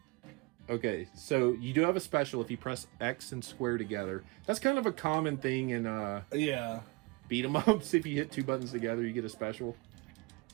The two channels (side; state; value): left; quieter; 26.5 dB